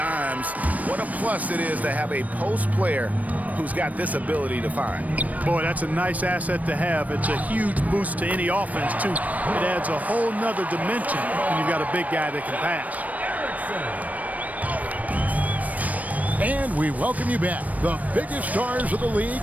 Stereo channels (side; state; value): left; late; 0.072 ms